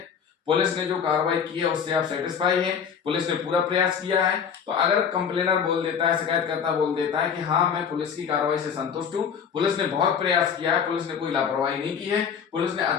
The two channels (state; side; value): quieter; right; 7.2 dB